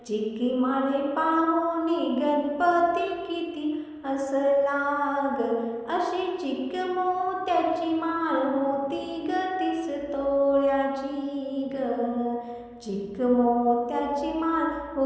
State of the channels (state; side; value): identical; both; correlation 1.00